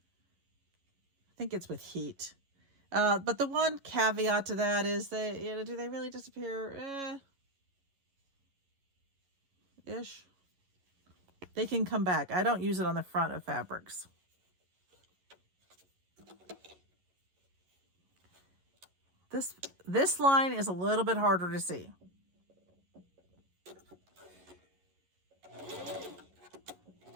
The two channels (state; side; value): late; left; 11 ms